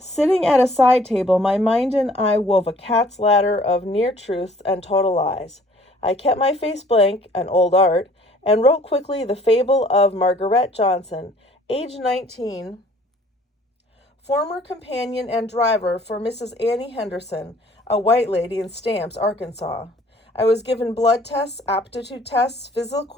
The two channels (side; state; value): both; normal; correlation 0.56